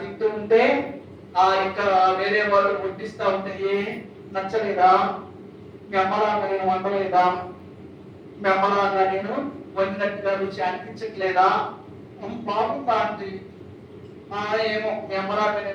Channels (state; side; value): identical; both; correlation 1.00